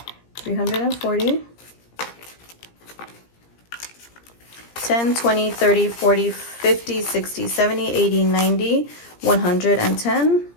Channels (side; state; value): right; late; 17 ms